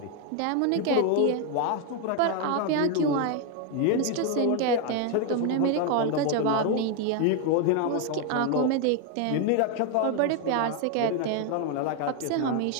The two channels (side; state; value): both; different; correlation 0.01